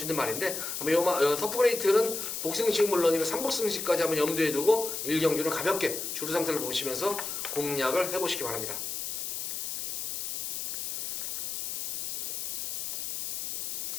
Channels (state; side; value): noise; left; hiss, 3 dB below the sound